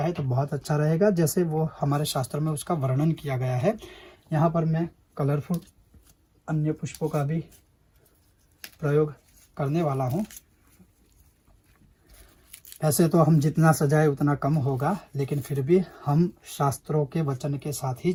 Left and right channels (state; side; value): identical; both; correlation 1.00